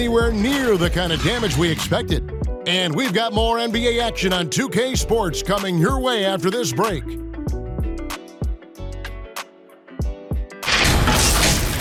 near the kind of damage we expected. And we've got more NBA action on 2K Sports coming your way after this break.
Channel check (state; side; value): identical; both; correlation 1.00